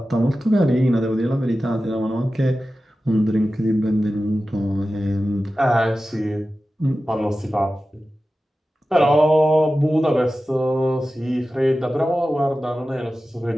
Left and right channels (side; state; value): both; normal; correlation 0.94